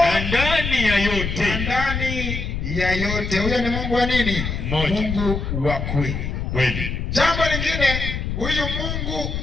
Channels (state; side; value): noise; left; rumble, 3 dB below the sound